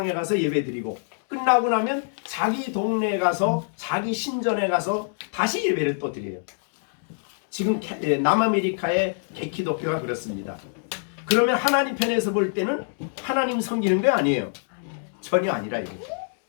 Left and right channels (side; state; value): right; silent; digital silence